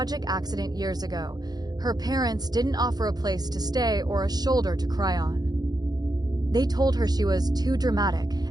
accident years ago, her parents didn't offer a place to stay or a shoulder to cry on. They told her she was too dramatic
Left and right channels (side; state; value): left; late; 0.19 ms